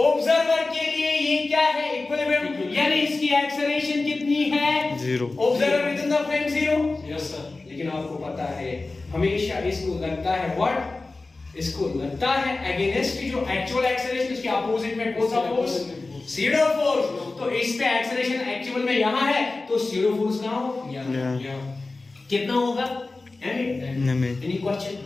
के लिए ये क्या है? इक्विलिब्रियम, यानी इसकी एक्सेलरेशन कितनी है? 0। Observer within the frame 0। Yes sir. लेकिन आपको पता है हमेशा इसको लगता है व्हाट? इसको लगता है अगेंस्ट जो एक्चुअल एक्सेलरेशन, उसके अपोजिट में कौन सा फोर्स? SIDO force. तो इस पे एक्सेलरेशन एक्चुअल में यहां है, तो सीडो फोर्स कहां होगा? कितना होगा? Any question?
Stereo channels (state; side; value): quieter; right; 3.4 dB